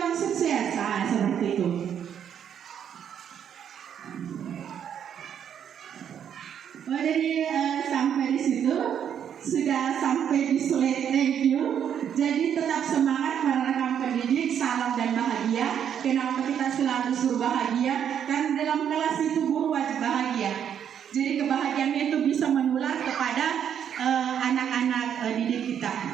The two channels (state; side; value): quieter; left; 8.8 dB